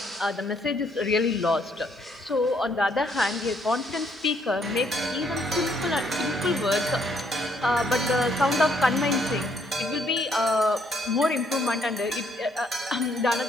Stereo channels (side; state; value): both; normal; correlation 0.69